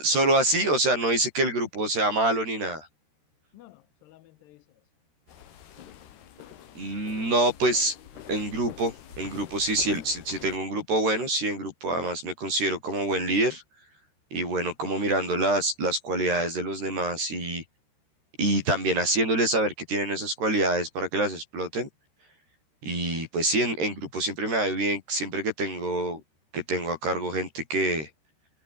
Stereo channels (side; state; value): left; late; 13 ms